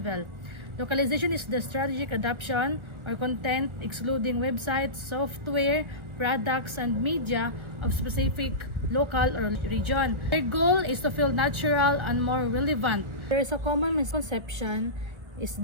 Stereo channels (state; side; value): late; left; 1.4 ms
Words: Localization is the strategic adoption or content excluding websites, software, products, and media of specific local or region. Their goal is to feel natural and more relevant. There is a common misconception is